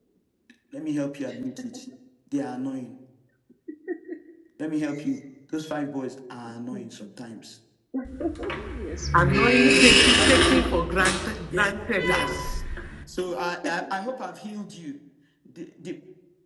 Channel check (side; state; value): both; identical; correlation 1.00